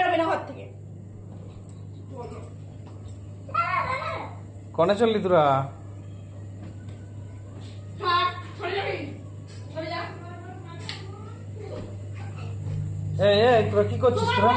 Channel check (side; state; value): both; identical; correlation 1.00